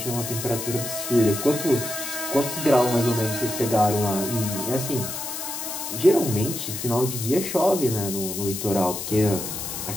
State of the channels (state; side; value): noise; left; hiss, 6 dB below the sound